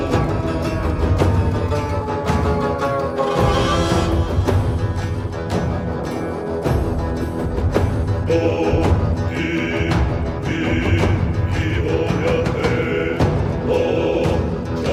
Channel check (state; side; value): identical; both; correlation 1.00